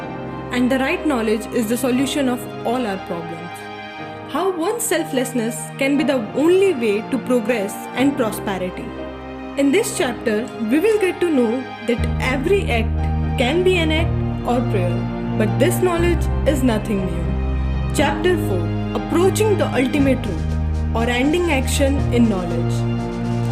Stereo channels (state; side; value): identical; both; correlation 1.00